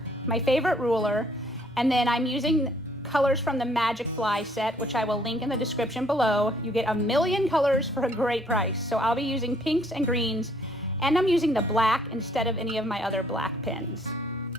my favorite ruler, and then I'm using colors from the Magic Fly set, which I will link in the description below. You get a million colors for a great price. So I'll be using pinks and greens, and I'm using the black instead of any of my other black pens.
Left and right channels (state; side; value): normal; both; correlation 0.64